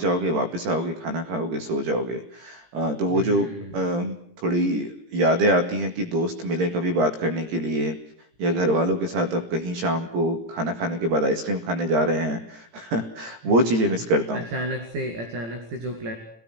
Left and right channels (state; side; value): late; left; 18 ms